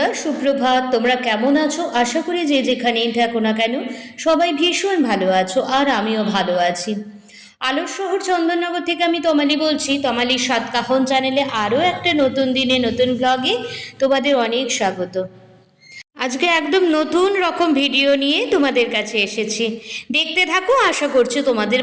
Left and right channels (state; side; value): identical; both; correlation 1.00